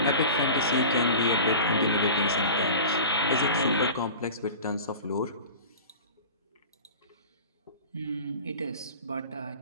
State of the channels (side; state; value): both; inverted; correlation -0.37